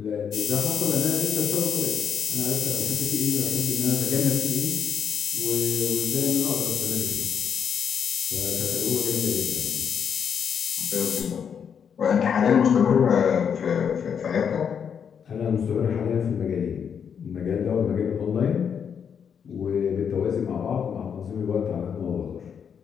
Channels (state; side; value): quieter; right; 7.4 dB